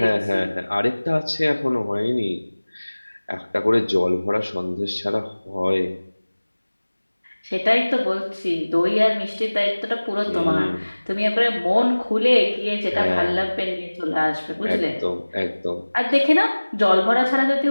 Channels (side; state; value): both; inverted; correlation -1.00